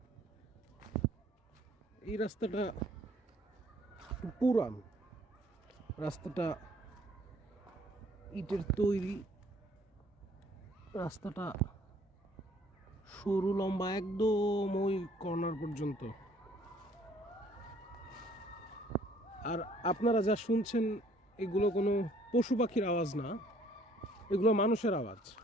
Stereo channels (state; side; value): normal; both; correlation 0.59